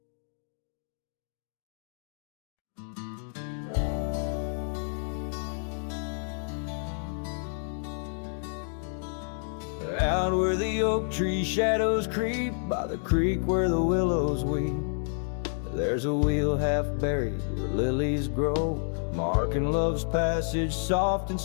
Out where the oak tree shadows creep, by the creek where the willows weep, there's a wheel half buried where lilies grow, marking love's passage soft and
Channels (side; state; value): right; silent; digital silence